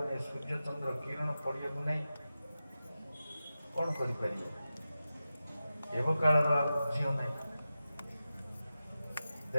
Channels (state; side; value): inverted; both; correlation -0.92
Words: ନାହିଁ, ସୂର୍ଯ୍ୟଚନ୍ଦ୍ର କିରଣ ପଡ଼ିବାକୁ ନାହିଁ, କଣ କରିପାରିବେ? ଏବେ କାଳର ଆଉ ଝିଅ ନାହିଁ,